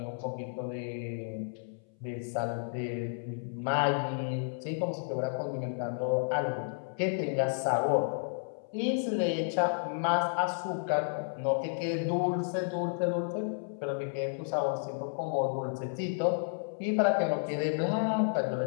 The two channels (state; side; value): silent; right; 56 dB below the other